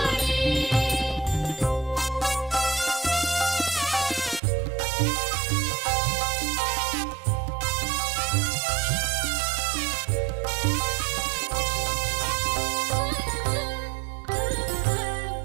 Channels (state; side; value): drops out; left; at 4.4 s